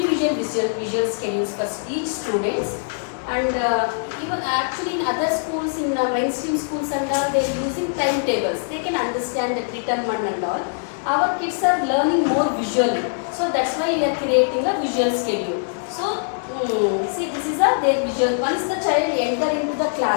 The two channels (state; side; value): silent; right; digital silence